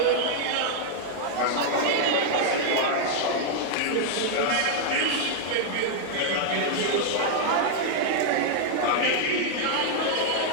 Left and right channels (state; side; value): different; both; correlation 0.00